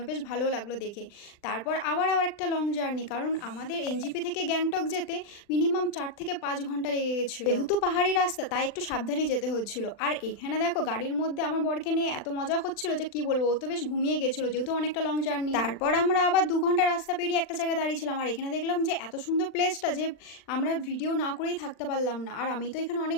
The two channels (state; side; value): late; right; 39 ms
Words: বেশ ভালো লাগলো দেখে। তারপর আবার একটা লং জার্নি, কারণ আমাদের এনজিপি থেকে গ্যাংটক যেতে মিনিমাম 4 থেকে 5 ঘন্টা লেগে গেছিল। যেহেতু পাহাড়ি রাস্তা তাই একটু সাবধানে যেতে হচ্ছিল। আর এখানে দেখো গাড়ির মধ্যে আমার বরকে নিয়ে এত মজা হচ্ছিল যে কি বলবো, ও তো বেশ ঘুমিয়ে গেছিল যেহেতু অনেকটা লং জার্নি। তারপর আমরা আবার 2 ঘন্টা রাস্তা পেরিয়ে একটা জায়গায় দাঁড়িয়েছিলাম, আর এখানে দেখলাম যে এত সুন্দর প্লেসটা যে আমরা ভিডিও না করেই থাকতে পারলাম না। আর আমি তো এখানে